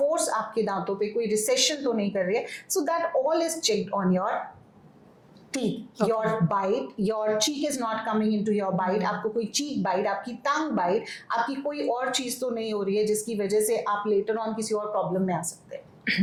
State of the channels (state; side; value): identical; both; correlation 1.00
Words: force आपके दांतों पे कोई session तो नहीं कर रही है. So that all is checked on your teeth, your bite, your cheek is not coming into your bite. आपको कोई चीक बाइट, आपकी टंग बाइट, आपकी कोई और चीज तो नहीं हो रही है जिसकी वजह से आप लेटर ऑन किसी और प्रॉब्लम में आ सकते हैं.